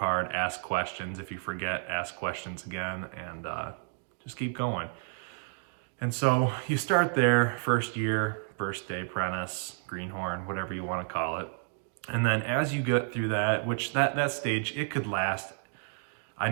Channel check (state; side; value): silent; left; 57 dB below the other